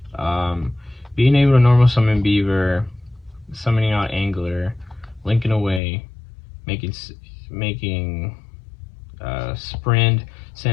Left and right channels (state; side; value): drops out; right; at 5.8 s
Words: Being able to normal summon Beaver, summoning out Angler, linking away, making Sprint,